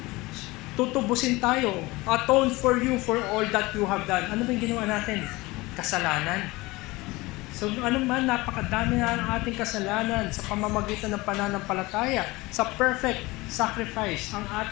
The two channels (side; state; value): right; quieter; 21.6 dB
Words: Tutubusin tayo, atone for you for all that you have done. Ano ba yung ginawa natin? Kasalanan. So ano man, napakadami na ang ating kasalanan sa pamamagitan ng pananampalataya, sa perfect sacrifice, ang